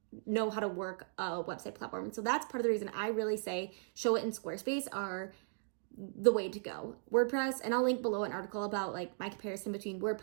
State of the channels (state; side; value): silent; left; digital silence